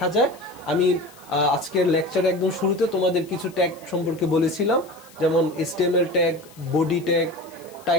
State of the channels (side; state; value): left; noise; hiss, 24 dB below the sound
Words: যায়। আমি আজকের লেকচারে একদম শুরুতে তোমাদের কিছু ট্যাগ সম্পর্কে বলেছিলাম, যেমন HTML tag, body tag,